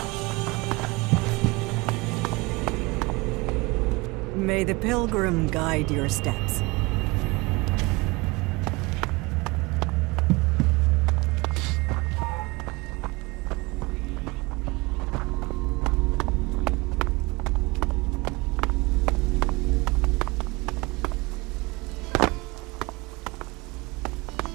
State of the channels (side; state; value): left; quieter; 24.6 dB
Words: May the pilgrim guide your steps.